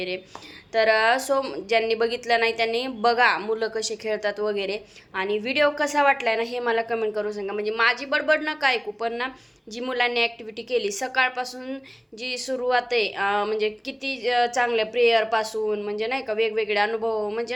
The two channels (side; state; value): both; identical; correlation 1.00